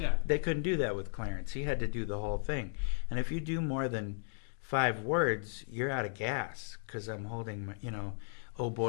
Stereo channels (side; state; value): right; silent; digital silence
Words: They couldn't do that with Clarence. He had to do the whole thing. And if you do more than 5 words, you're out of gas because I'm holding my, oh